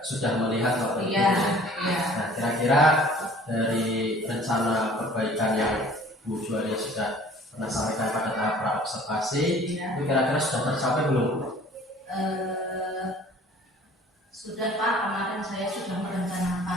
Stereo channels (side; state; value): both; normal; correlation 0.50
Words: sudah melihat waktu itu. Iya, Ya. iya. Nah, kira-kira dari rencana perbaikan yang Bu Juwaria sudah pernah sampaikan pada tahap praobservasi, Iya. itu kira-kira sudah tercapai belum? Sudah Pak, kemarin saya sudah merencanakan